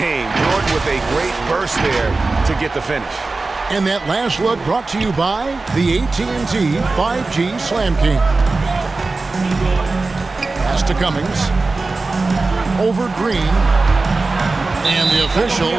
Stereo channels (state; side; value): quieter; left; 3.6 dB